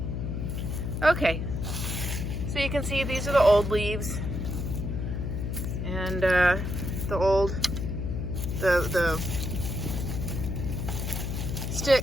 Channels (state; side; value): noise; left; hum, 2 dB below the sound